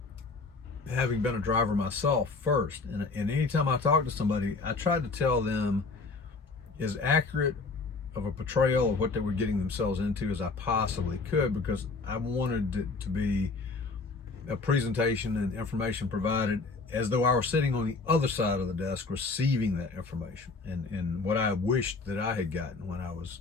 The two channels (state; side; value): quieter; right; 4.0 dB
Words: having been a driver myself first, and anytime I talked to somebody, I tried to tell them as accurate of a portrayal of what they were getting themselves into as I possibly could, because I wanted it to be a presentation and information provided as though I were sitting on the other side of the desk receiving that information, and what I wished that I had gotten when I was